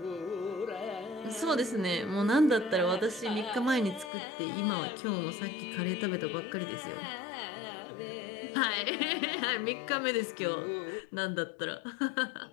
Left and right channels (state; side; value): drops out; right; at 4.1 s